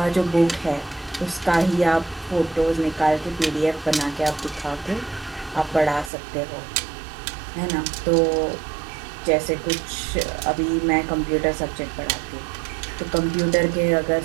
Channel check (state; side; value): drops out; left; at 6.1 s